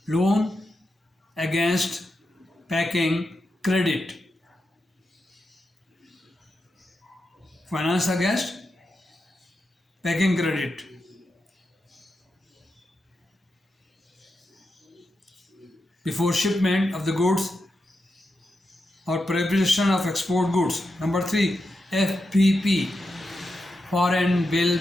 loan against packing credit. Finance against packing credit. Before shipment of the goods or preparation of export goods. Number three, FBP, foreign bill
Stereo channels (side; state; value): both; normal; correlation 0.88